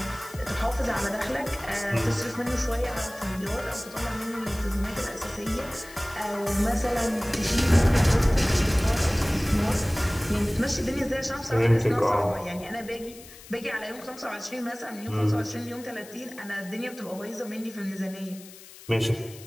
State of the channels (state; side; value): noise; left; hiss, 19 dB below the sound